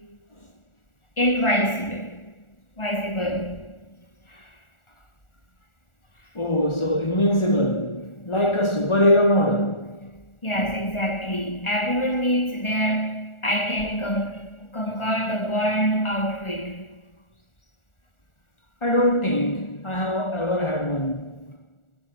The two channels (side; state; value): right; late; 1.4 ms